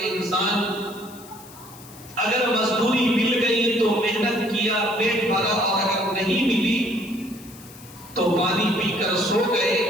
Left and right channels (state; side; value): noise; left; hiss, 20 dB below the sound